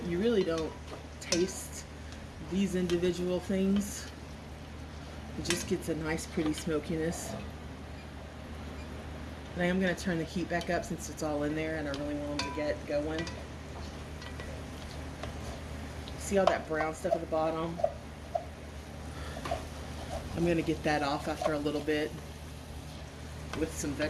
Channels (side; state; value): both; identical; correlation 1.00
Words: you really don't taste these individual things. It just gets a nice pretty smokiness. And I am going to turn the heat back up since it's all in there and I really want them to get going. See all that brown stuff at the bottom? I'm going to get that off after a little bit with some